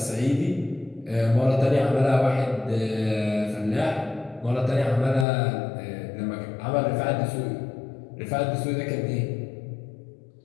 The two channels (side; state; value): right; drops out; at 5.2 s